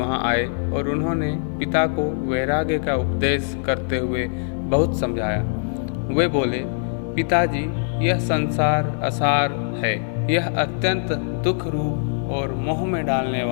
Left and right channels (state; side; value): silent; right; 58 dB below the other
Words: आए और उन्होंने पिता को वैराग्य का उपदेश करते हुए बहुत समझाया। वे बोले, पिताजी, यह संसार असार है। यह अत्यंत दुख रूप और मोह में डालने